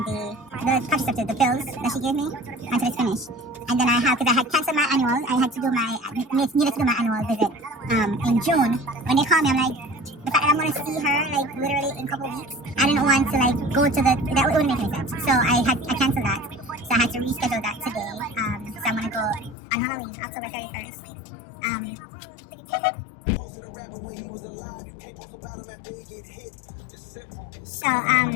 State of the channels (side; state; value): right; drops out; at 19.6 s